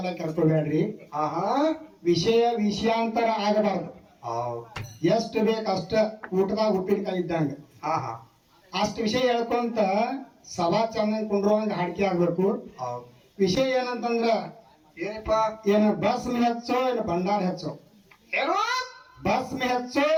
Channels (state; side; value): identical; both; correlation 1.00